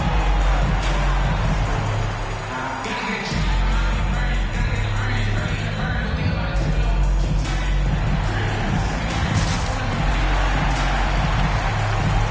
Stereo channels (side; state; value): both; identical; correlation 1.00